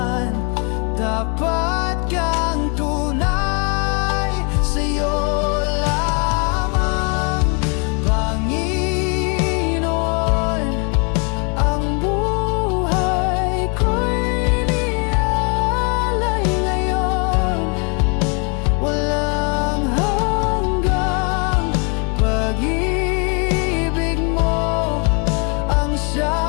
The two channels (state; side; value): quieter; right; 35.6 dB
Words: Dapat kang tunay, sa'yo lamang, Panginoon. Ang buhay ko'y inialay ngayon. Walang hanggang pag-ibig mo ang